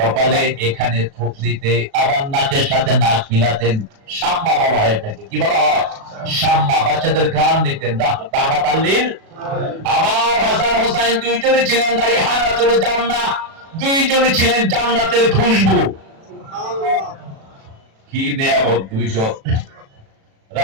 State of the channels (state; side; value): late; left; 36 ms